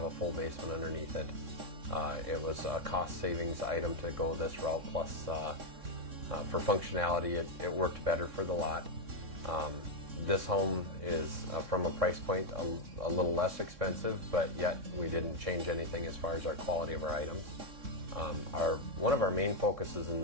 a full basement underneath it. It was a cost savings item to go this route, plus for functionality it worked better for the lot. This home is from a price point a little less expensive, but yet we didn't change anything as far as our quality of our items. One of our main focuses in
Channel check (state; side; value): late; left; 3.6 ms